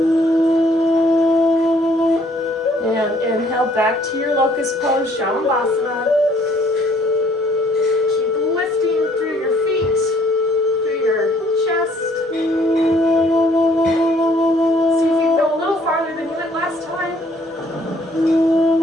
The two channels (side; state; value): both; normal; correlation 0.62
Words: Back to your locust pose, Shavasana. Keep lifting through your feet, through your chest. See if you can go a little farther than you went last time.